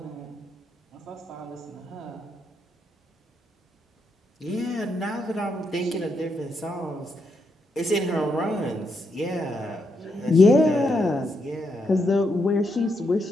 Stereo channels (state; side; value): normal; both; correlation 0.80